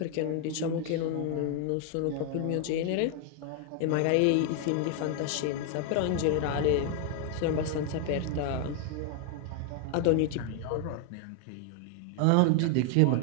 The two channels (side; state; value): both; different; correlation 0.00